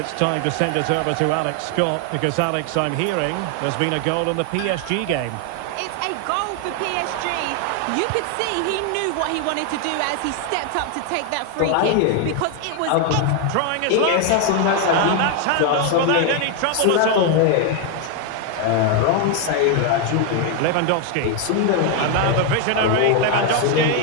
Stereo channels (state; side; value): different; both; correlation 0.01